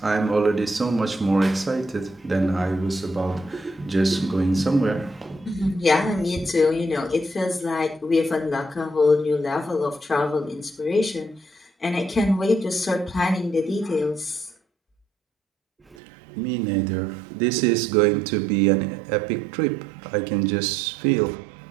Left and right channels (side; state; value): left; drops out; at 16.0 s